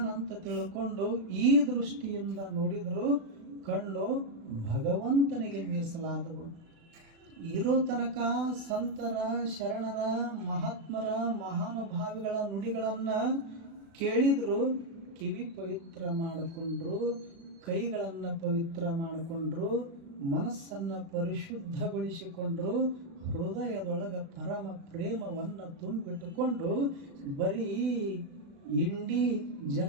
ತಿಳ್ಕೊಂಡು ಈ ದೃಷ್ಟಿಯಿಂದ ನೋಡಿದ್ರು ಕಣ್ಣು ಭಗವಂತನಿಗೆ ಮೀಸಲಾದವು. ಇರೋ ತನಕ ಸಂತರ, ಶರಣರ, ಮಹಾತ್ಮರ, ಮಹಾನುಭಾವಿಗಳ ನುಡಿಗಳನ್ನು ಕೇಳಿದ್ರು, ಕಿವಿ ಪವಿತ್ರ ಮಾಡಿಕೊಂಡ್ರು, ಕೈಗಳನ್ನು ಪವಿತ್ರ ಮಾಡಿಕೊಂಡ್ರು, ಮನಸ್ಸನ್ನು ಪರಿಶುದ್ಧಗೊಳಿಸಿಕೊಂಡ್ರು, ಹೃದಯದೊಳಗೆ ಪರಮ ಪ್ರೇಮವನ್ನು ತುಂಬಿಟ್ಟುಕೊಂಡು ಬರೀ ಇಂಡಿ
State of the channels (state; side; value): late; left; 36 ms